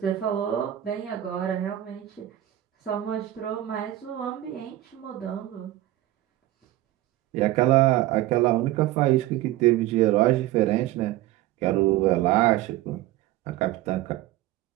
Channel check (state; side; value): quieter; left; 14.8 dB